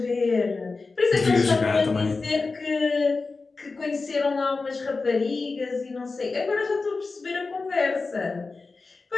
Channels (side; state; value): right; quieter; 4.0 dB